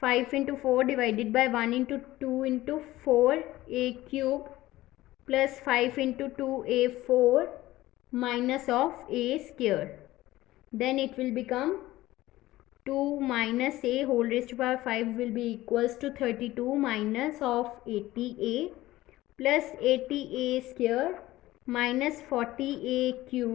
into 4 divided by 1 into 2 into 4a cube plus 5 into 2a4 minus of a square. Then it will become 2 minus a whole raised to power 5 will be equals to 32 minus of 80a plus 80a square minus 40a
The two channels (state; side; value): quieter; right; 16.8 dB